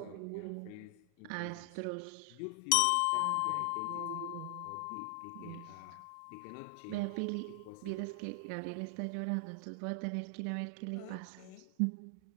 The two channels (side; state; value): both; different; correlation 0.00